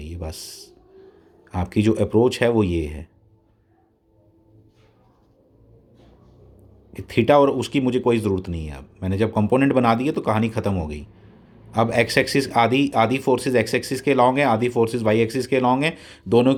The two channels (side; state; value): both; identical; correlation 1.00